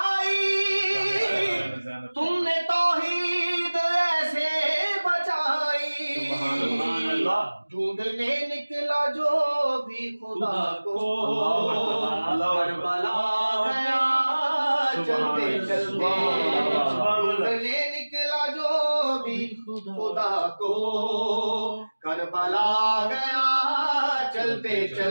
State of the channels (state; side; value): inverted; both; correlation -1.00